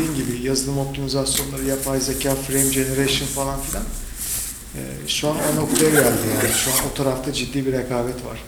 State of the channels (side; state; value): both; identical; correlation 1.00